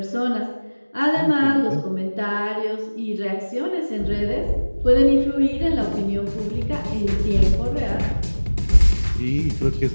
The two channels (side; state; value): both; inverted; correlation -1.00